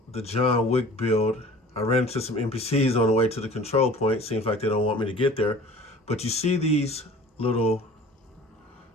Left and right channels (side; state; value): both; normal; correlation 0.45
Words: the John Wick build, I ran into some NPCs on the way to the control point. Seems like they don't want me to get there. But you see these are